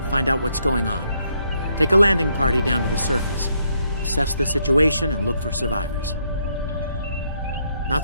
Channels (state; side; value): inverted; both; correlation -0.74